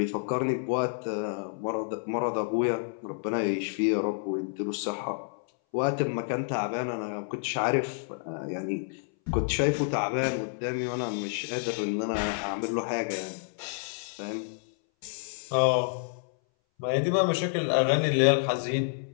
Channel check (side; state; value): right; silent; 59 dB below the other